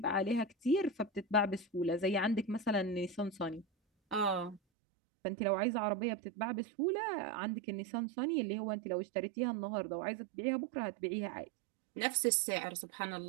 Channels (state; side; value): drops out; left; at 4.6 s